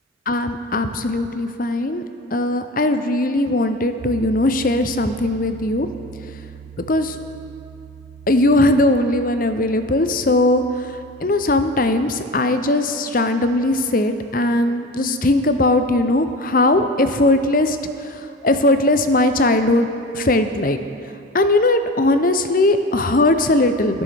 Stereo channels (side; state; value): both; normal; correlation 0.33